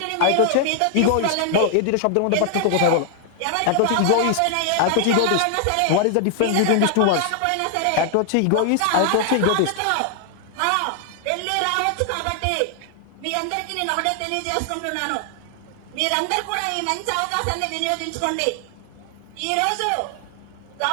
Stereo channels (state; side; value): different; both; correlation 0.00